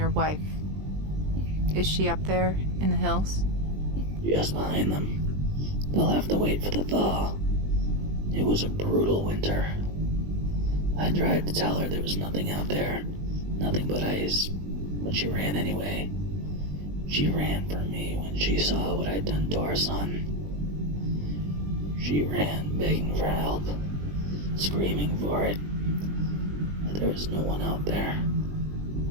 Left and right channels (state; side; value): late; left; 20 ms